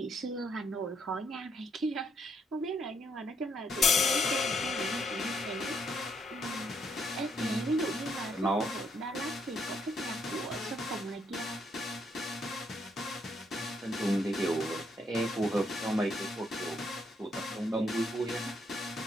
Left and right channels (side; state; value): both; normal; correlation 0.73